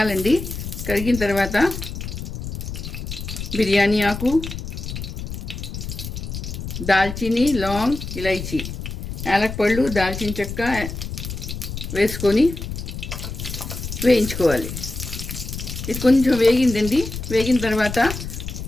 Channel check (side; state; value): left; noise; rumble, 7 dB below the sound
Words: కరిగిన తర్వాత బిర్యానీ ఆకు, దాల్చిని, లాంగ్, ఇలైచి, యాలకపళ్ళు, దాల్చిన చెక్క వేసుకొని వేయించుకోవాలి. ఇది కొంచెం వేగిందండి. వేగిన తర్వాత